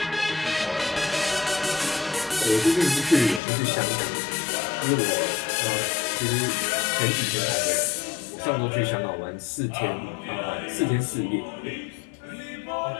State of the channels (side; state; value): right; drops out; at 3.4 s